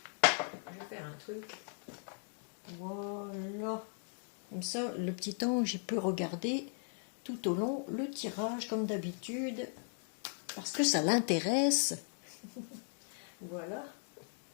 Je vais faire un truc. Voilà. Comme ça, le petit ange, il peut regarder tout au long le tirage comme d'habitude. Parce que ça l'intéresse. Voilà.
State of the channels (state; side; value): silent; right; 53 dB below the other